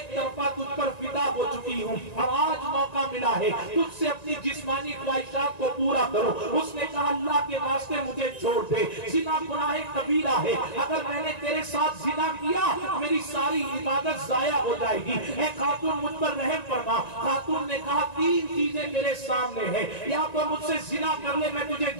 طرفہ تجھ پر فدا ہو چکی ہوں اور آج موقع ملا ہے تجھ سے اپنی جسمانی خواہشات کو پورا کرو۔ اس نے کہا اللہ کے واسطے مجھے چھوڑ دے، زنا گناہ کبیرہ ہے، اگر میں نے تیرے ساتھ زنا کیا میری ساری عبادت ضائع ہو جائے گی، اے خاتون مجھ پر رحم فرما۔ خاتون نے کہا تین چیزیں میرے سامنے ہیں، یا تو مجھ سے زنا کر لے میں تجھے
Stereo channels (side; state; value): right; late; 1.9 ms